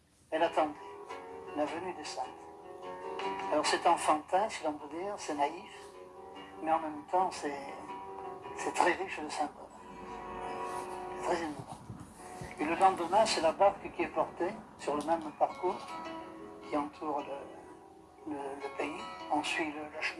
elle attendait la venue des saintes. Alors c'est enfantin, si l'on peut dire, c'est naïf, mais en même temps c'est très riche de symboles. C'est très émouvant. Et le lendemain, c'est la barque qui est portée sur le même parcours qui entoure le pays. On suit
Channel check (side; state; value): both; identical; correlation 1.00